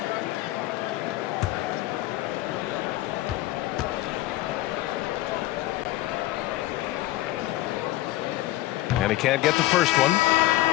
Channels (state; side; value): quieter; right; 16.6 dB